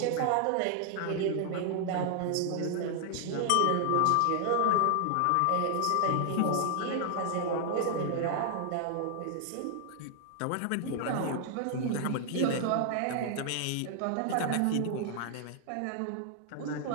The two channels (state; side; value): different; both; correlation 0.00